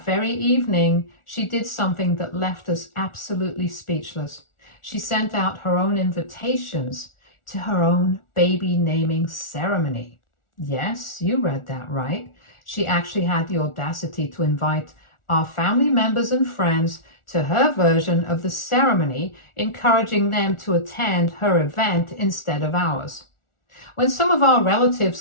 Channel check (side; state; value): right; late; 1.4 ms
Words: very evening, she did something that left us absolutely speechless. She sent out her own invitations to her own baby naming ceremony. Yes, you read that right. She actually had the audacity to invite our family members and friends to her version of the ceremony, encouraging them to attend her event instead of ours. When some of our relatives